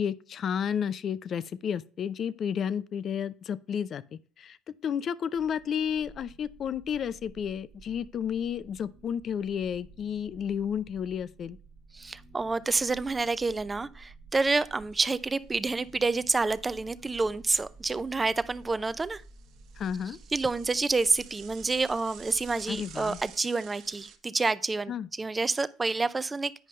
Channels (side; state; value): both; normal; correlation 0.84